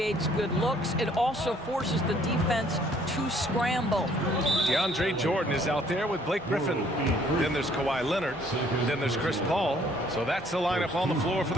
good looks. It also forces the defense to scramble. DeAndre Jordan is out there with Blake Griffin. Then there's Kawhi Leonard. Then there's Chris Paul. So that's the lineup on the floor for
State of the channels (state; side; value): normal; both; correlation 0.61